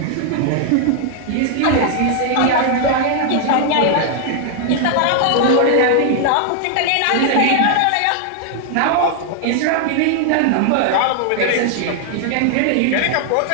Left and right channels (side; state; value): both; different; correlation 0.00